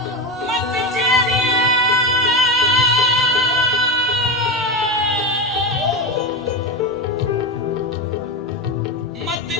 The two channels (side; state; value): both; normal; correlation 0.17